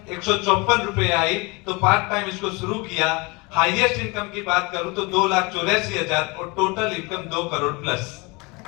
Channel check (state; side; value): quieter; right; 26.6 dB